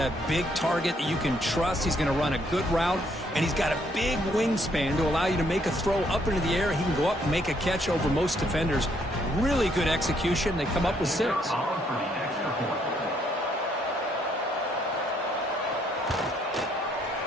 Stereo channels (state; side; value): normal; both; correlation 0.70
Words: big target that you can trust. He's going to run a good route, and he's got a big wingspan to allow you to make a throw up into the air. He can go up and make a catch over most defenders. Really good execution. They come up with 6.